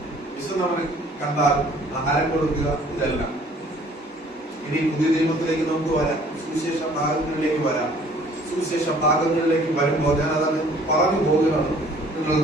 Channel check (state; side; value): normal; both; correlation 0.55